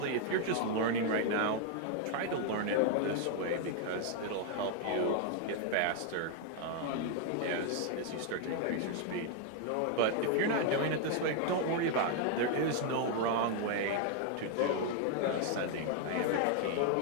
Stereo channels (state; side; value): different; both; correlation 0.00